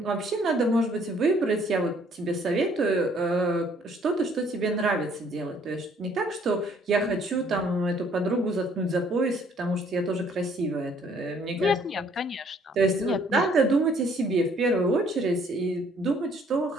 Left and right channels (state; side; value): normal; both; correlation 0.62